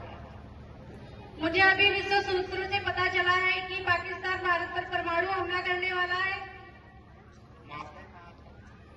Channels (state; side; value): identical; both; correlation 1.00